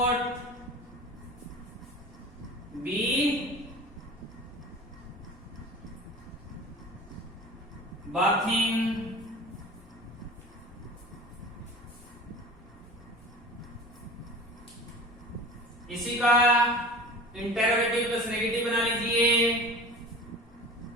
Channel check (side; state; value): both; normal; correlation 0.38